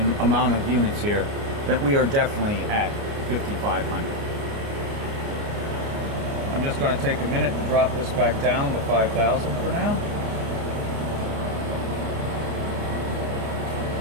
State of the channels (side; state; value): left; late; 29 ms